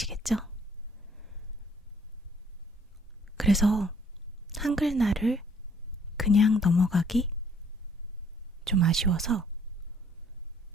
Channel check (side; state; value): both; normal; correlation 0.61